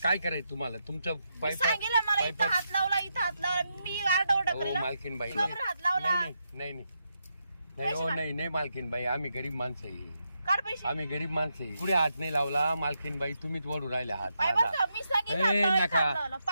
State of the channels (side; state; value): both; inverted; correlation -0.83